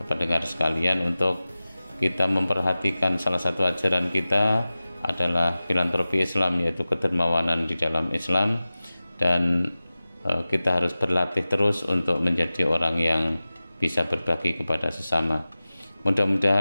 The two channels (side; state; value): both; inverted; correlation -0.96